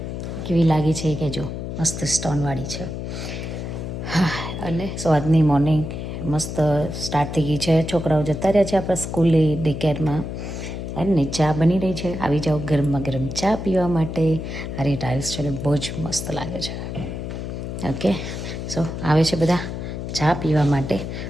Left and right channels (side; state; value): left; noise; hum, 6 dB below the sound